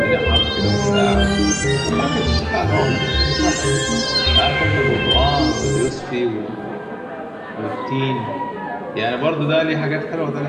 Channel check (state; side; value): identical; both; correlation 1.00